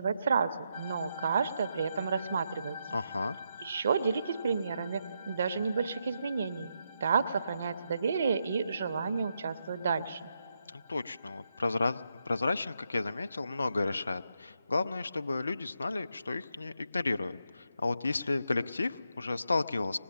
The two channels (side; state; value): both; inverted; correlation -0.82